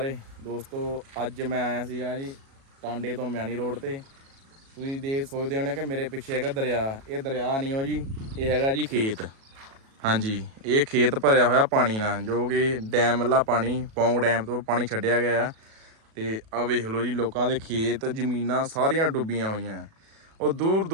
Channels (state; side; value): late; left; 37 ms